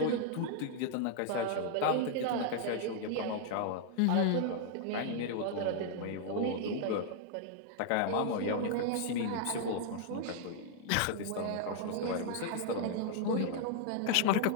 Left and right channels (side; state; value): both; different; correlation -0.01